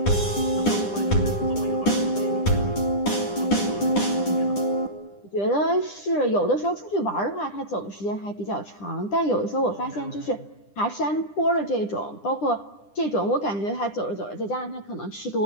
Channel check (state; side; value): late; right; 10 ms